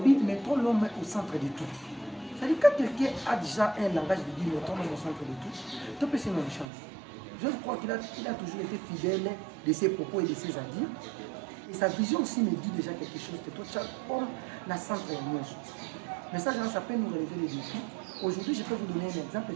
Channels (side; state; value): left; drops out; at 6.7 s